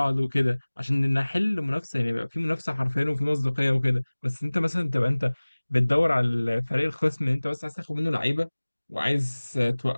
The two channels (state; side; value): inverted; both; correlation -1.00